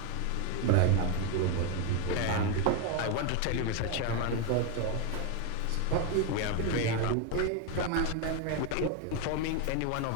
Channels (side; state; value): both; different; correlation 0.02